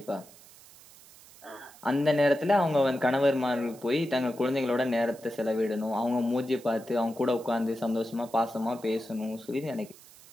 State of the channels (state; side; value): noise; right; hiss, 22 dB below the sound